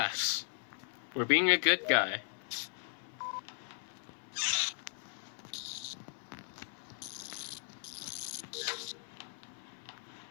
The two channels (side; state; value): right; silent; 53 dB below the other